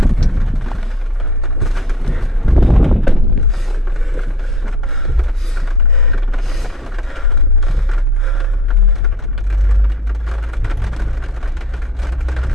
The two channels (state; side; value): normal; both; correlation 0.53